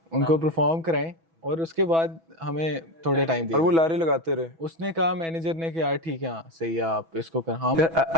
उनको परफॉर्म कराएं, और उसके बाद हमें थोड़े टाइम दिए। और वो लारे लगाते रहे। उसने कहा, मैनेजर ने कि यार ठीक है, हाँ सही है, आप इसको कर। हाँ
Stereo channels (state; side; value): late; left; 6.1 ms